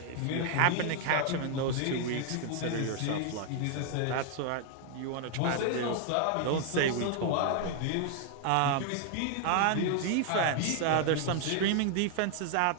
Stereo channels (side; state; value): both; different; correlation 0.00